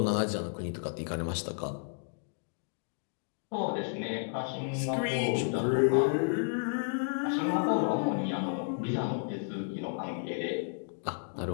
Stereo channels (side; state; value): right; silent; digital silence